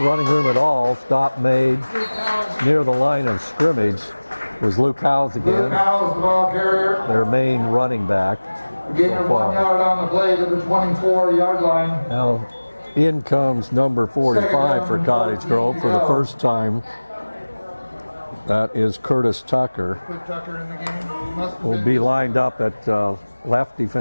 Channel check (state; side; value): inverted; both; correlation -1.00